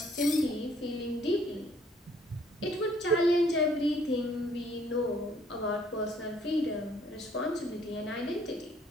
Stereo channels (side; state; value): both; normal; correlation 0.62